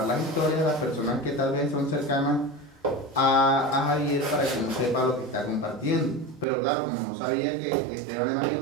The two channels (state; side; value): drops out; left; at 6.5 s